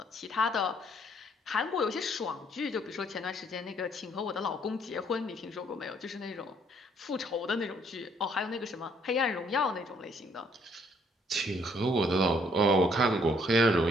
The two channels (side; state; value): both; normal; correlation 0.65